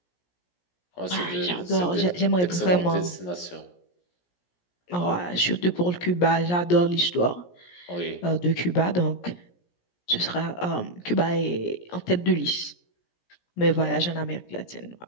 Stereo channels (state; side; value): late; right; 17 ms